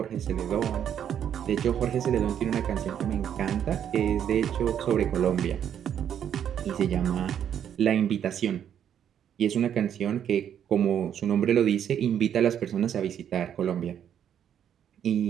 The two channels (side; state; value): left; quieter; 9.3 dB